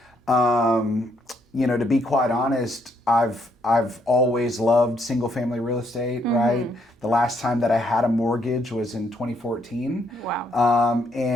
You know, to be quite honest, I've always loved single family real estate, right? The last time that I had a mortgage was in 2014. Wow.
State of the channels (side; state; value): both; normal; correlation 0.72